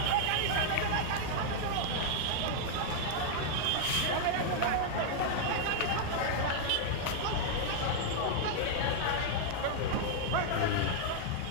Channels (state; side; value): different; both; correlation -0.01